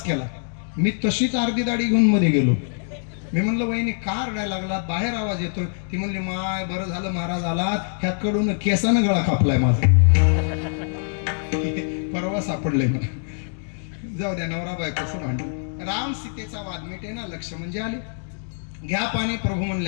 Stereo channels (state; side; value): silent; right; digital silence